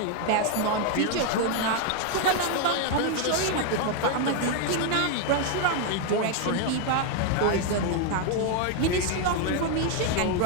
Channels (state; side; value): different; both; correlation 0.01